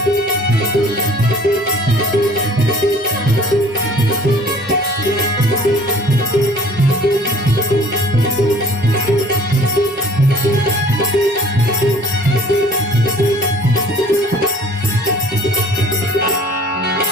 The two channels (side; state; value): both; normal; correlation 0.52